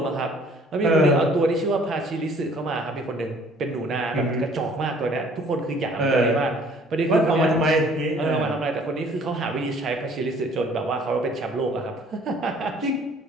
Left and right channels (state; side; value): normal; both; correlation 0.56